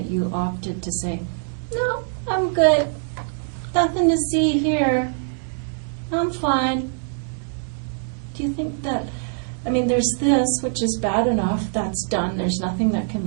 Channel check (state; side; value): silent; left; digital silence